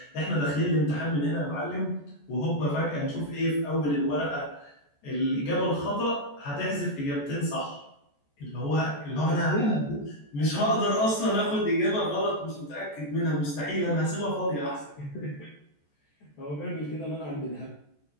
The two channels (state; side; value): late; right; 14 ms